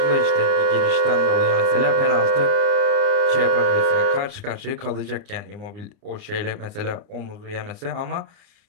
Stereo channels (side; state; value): left; late; 29 ms